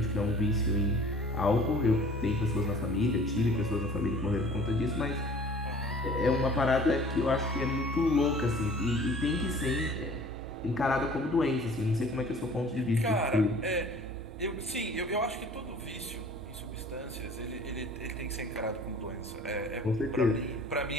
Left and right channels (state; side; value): normal; both; correlation 0.48